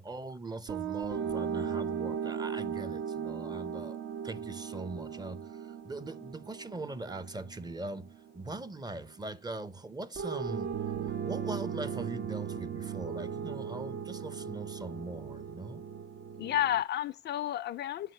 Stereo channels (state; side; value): normal; both; correlation 0.16